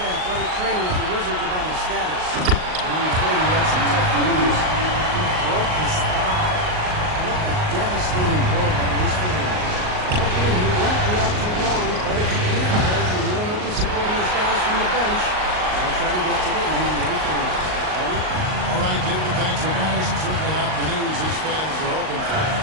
athletic trainer of the Wizards about his status. And I'm afraid he had some tough news. He broke his thigh. What a devastating blow that is for him. Hopefully he won't be out too long, but if he can't play, you know he'll be supporting his guys from the bench. They'll try to get to the NBA Finals. Ready? All right, David, thanks for guys. Certainly not the news his fans are hoping for.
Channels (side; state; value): left; late; 38 ms